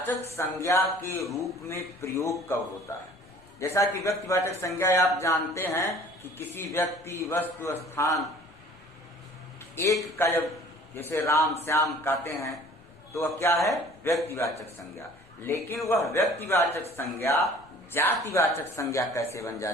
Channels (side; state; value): left; noise; rumble, 27 dB below the sound